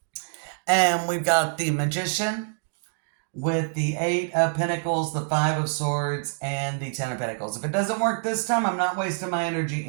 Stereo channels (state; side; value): silent; left; digital silence